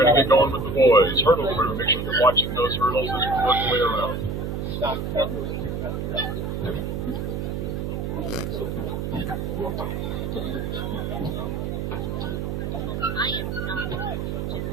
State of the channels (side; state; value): right; noise; hum, 3 dB below the sound